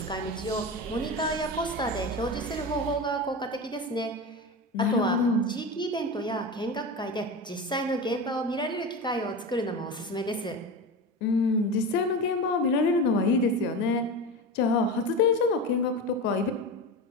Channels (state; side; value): normal; both; correlation 0.25